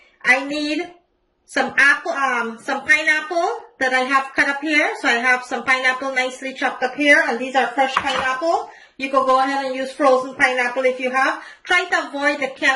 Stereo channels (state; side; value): identical; both; correlation 1.00